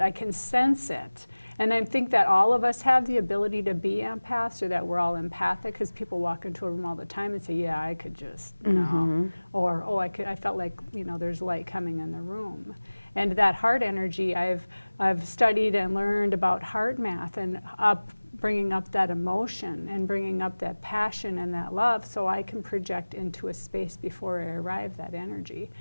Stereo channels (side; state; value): both; inverted; correlation -1.00